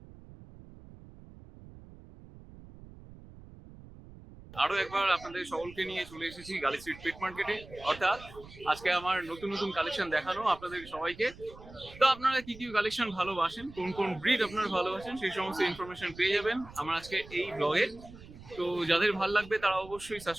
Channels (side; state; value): right; noise; rumble, 18 dB below the sound